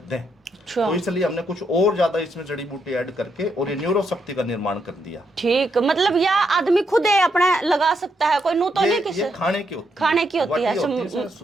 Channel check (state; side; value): normal; both; correlation 0.79